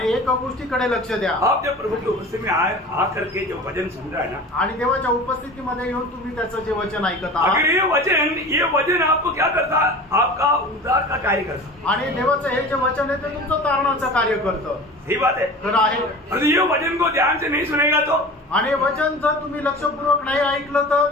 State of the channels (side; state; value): both; normal; correlation 0.37